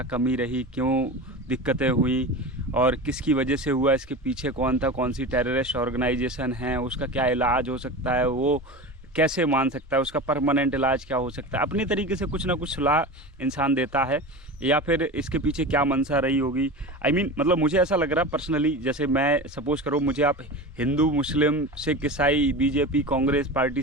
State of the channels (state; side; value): normal; both; correlation 0.29